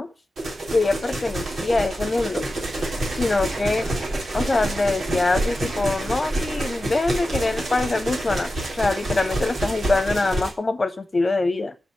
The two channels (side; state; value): both; normal; correlation 0.93